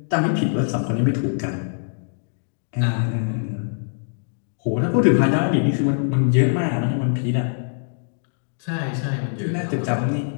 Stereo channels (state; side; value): silent; right; digital silence